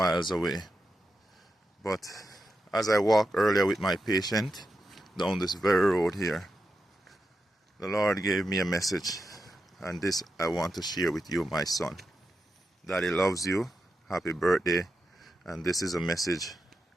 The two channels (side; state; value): both; normal; correlation 0.88